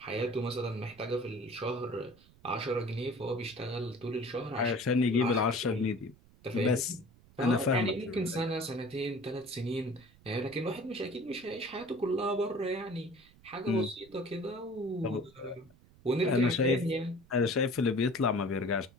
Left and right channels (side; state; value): right; noise; rumble, 26 dB below the sound